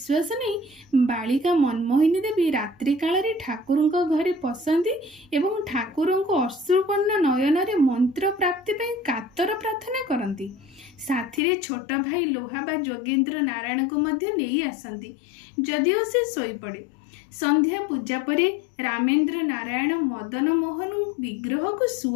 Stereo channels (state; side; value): drops out; right; at 11.4 s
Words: नहीं बालिका मनमोहिनी देवी रात्रि काल ठाकुर घरे पसंदी एवं ठाकुर अश्रुपन्न नयन रे मंत्र प्राप्ति पई कातर प्रार्थना करती। साथी रे छोट भाई लोहा बा जोगेंद्र नारायण को मध्य नहीं आसती। जदिओ से सोई पड़े। संध्या पूजा परे रामेंद्र नारायण मदन मोहन विग्रह को